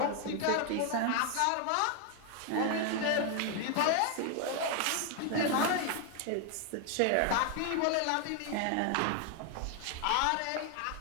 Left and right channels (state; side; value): different; both; correlation 0.01